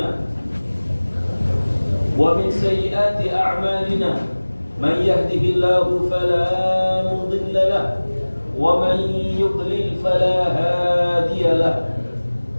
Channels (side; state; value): both; inverted; correlation -1.00